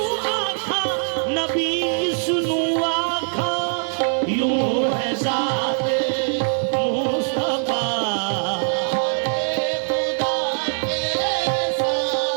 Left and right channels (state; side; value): silent; left; digital silence